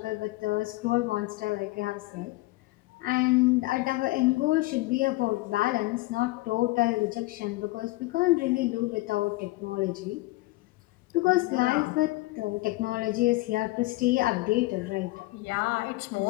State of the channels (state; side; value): quieter; right; 20.4 dB